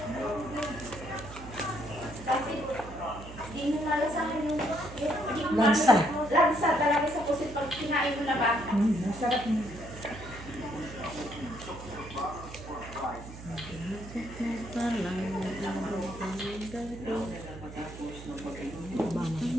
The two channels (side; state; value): right; noise; hum, 13 dB below the sound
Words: Kasi, di mo nalasahan yung Lansa. Lansa talaga sa pusit pag kinain mo na ba? Masarap na.